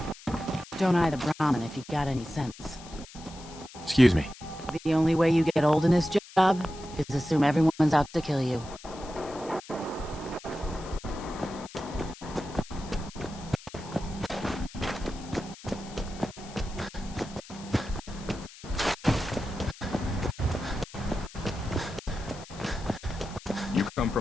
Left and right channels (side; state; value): left; noise; hiss, 18 dB below the sound